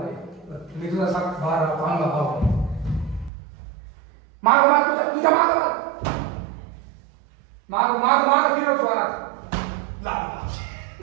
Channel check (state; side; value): drops out; left; at 3.3 s